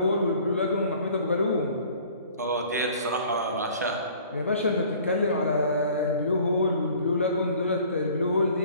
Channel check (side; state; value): both; inverted; correlation -0.51